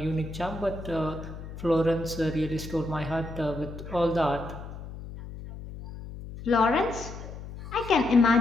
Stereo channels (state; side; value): noise; left; hum, 12 dB below the sound